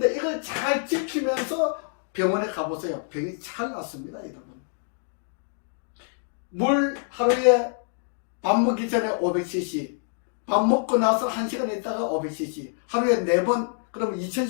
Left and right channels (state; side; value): silent; right; digital silence